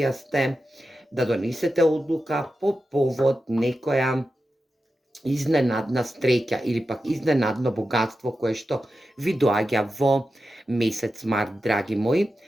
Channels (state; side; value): normal; both; correlation 0.91